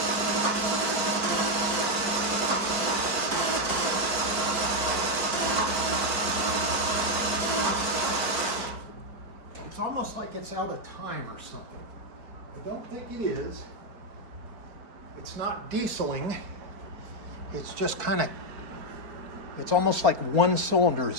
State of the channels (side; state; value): left; late; 4.6 ms